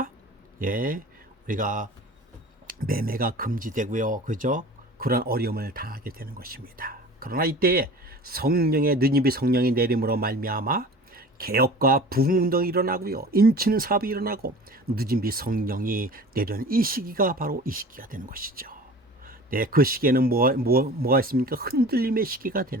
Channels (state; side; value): normal; both; correlation 0.40